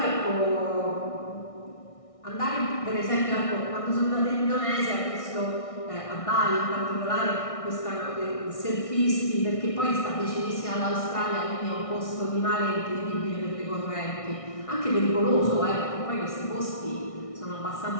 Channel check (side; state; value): right; late; 1.6 ms